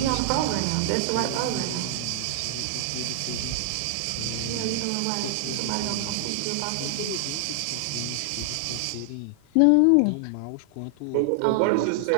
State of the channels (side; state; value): both; different; correlation 0.00